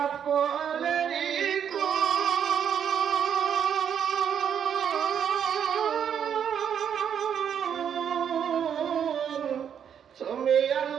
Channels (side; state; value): left; quieter; 8.3 dB